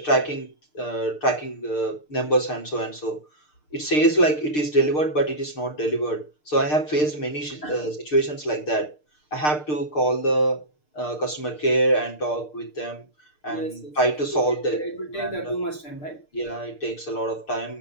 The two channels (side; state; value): right; late; 6.6 ms